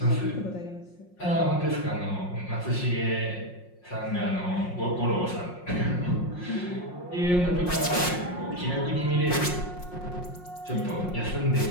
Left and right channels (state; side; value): late; right; 5.6 ms